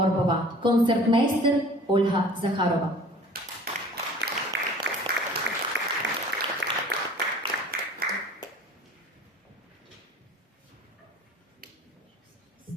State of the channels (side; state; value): both; normal; correlation 0.46